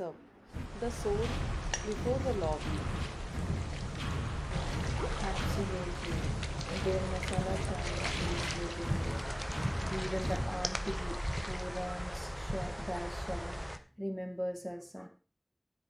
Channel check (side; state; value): both; identical; correlation 1.00